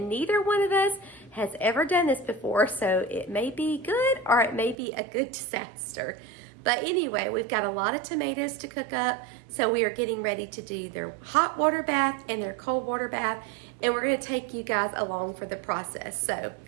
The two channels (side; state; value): left; drops out; at 4.8 s